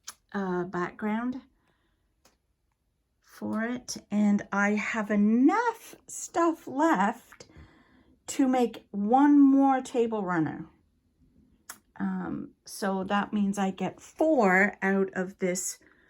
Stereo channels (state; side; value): identical; both; correlation 1.00